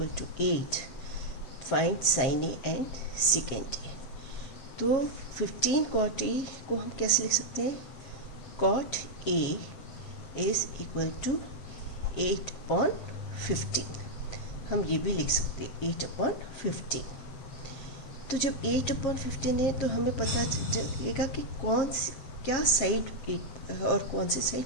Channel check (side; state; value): right; late; 7.5 ms